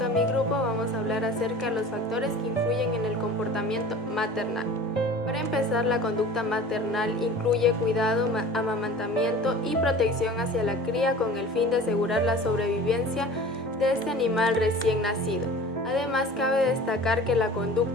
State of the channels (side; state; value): both; normal; correlation 0.41